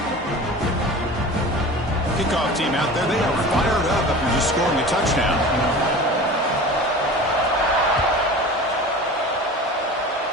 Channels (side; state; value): both; normal; correlation 0.36